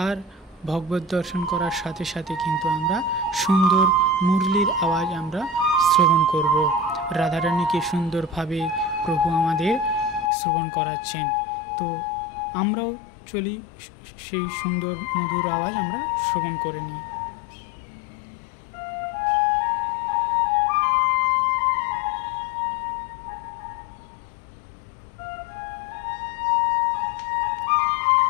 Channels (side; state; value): right; drops out; at 10.3 s